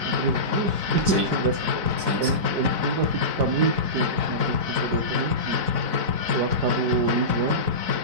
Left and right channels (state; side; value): late; left; 4.6 ms